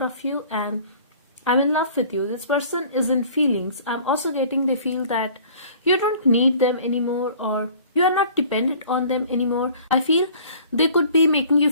of you and I'm in love with you. This person is in feelings. I'm also getting they feel that you don't need them anymore or you are not dependent on them anymore. I feel they could be making you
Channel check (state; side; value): inverted; both; correlation -0.50